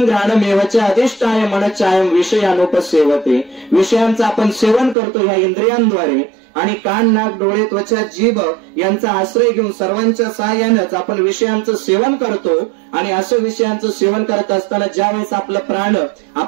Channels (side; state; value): left; drops out; at 5.0 s